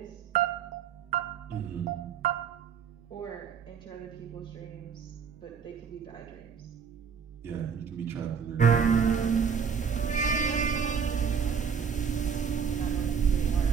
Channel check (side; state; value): left; quieter; 6.7 dB